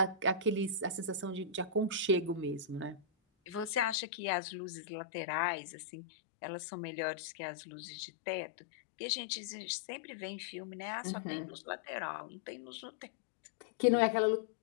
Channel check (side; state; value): right; drops out; at 4.0 s